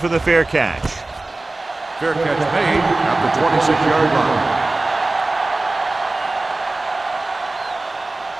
the fair catch. Fair catch made at the 26-yard line.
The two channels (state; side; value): quieter; left; 3.0 dB